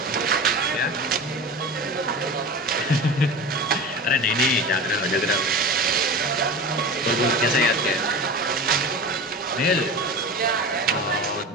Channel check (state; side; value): normal; both; correlation 0.31